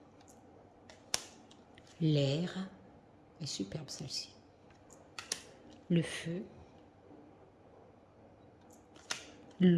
l'air, est superbe celle-ci, le feu,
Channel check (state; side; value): identical; both; correlation 1.00